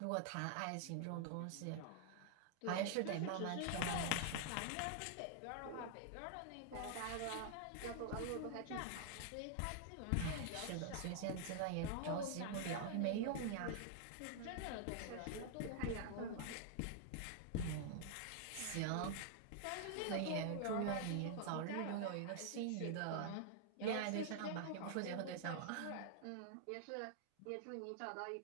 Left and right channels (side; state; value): both; different; correlation 0.00